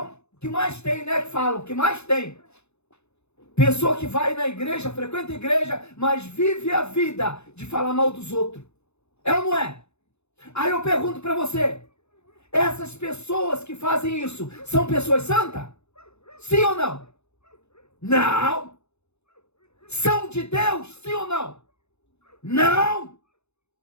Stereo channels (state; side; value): late; right; 0.81 ms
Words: que mais tem, né? Que falam, que mais tem. Pessoa que vai na igreja, frequenta a igreja, mas vive a vida de falar mal dos outros. É ou não é? Aí eu pergunto para você, essas pessoas que fazem isso, são pessoas santas? Sim ou não? Não. São de Deus? Sim ou não? Não.